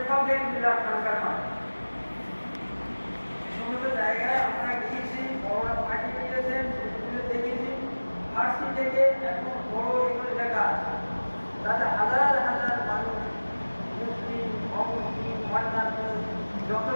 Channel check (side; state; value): both; inverted; correlation -1.00